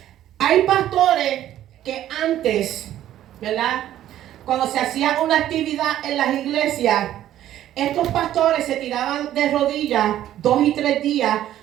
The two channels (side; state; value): left; quieter; 12.4 dB